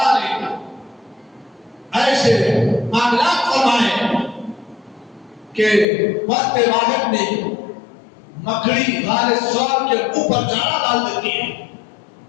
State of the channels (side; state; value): right; drops out; at 5.9 s